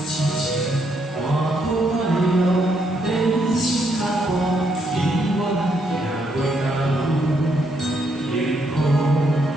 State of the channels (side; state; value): both; normal; correlation 0.75